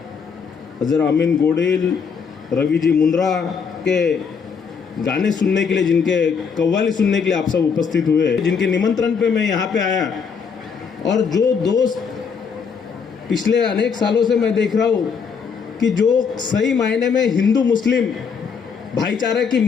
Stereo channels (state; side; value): quieter; right; 6.1 dB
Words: अजर अमीन गोडिल, रवि जी मुंद्रा के गाने सुनने के लिए, जिनके कव्वाली सुनने के लिए आप सब उपस्थित हुए, जिनके निमंत्रण पे मैं यहाँ पे आया, और जो दोस्त पिछले अनेक सालों से मैं देख रहा हूँ कि जो सही मायने में हिंदू मुस्लिम भाईचारे की